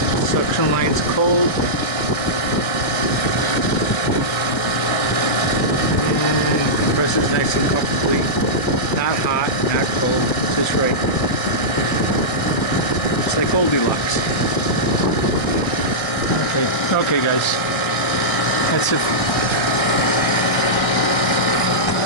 Suction line's cold. And compressor's nice and comfortably. Not hot, not cold, just right. It's like Goldilocks. Okay guys, that's it.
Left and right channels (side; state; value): right; late; 1.6 ms